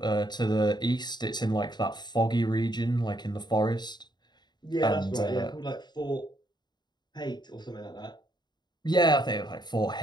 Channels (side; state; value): right; late; 0.21 ms